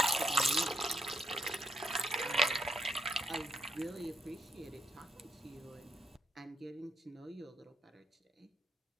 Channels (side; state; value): both; normal; correlation 0.75